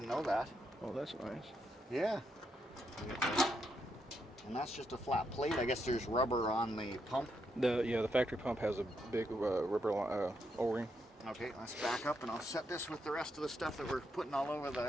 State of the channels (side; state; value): both; normal; correlation 0.80